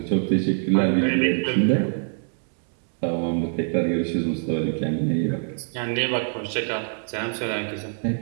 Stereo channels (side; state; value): left; silent; 55 dB below the other